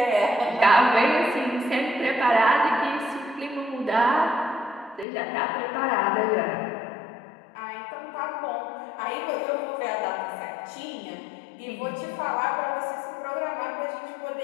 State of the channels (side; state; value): right; drops out; at 5.1 s